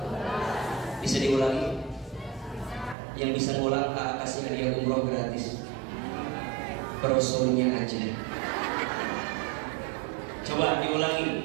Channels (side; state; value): left; drops out; at 3.0 s